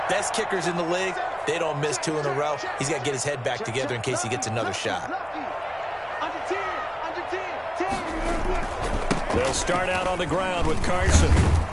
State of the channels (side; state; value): both; identical; correlation 1.00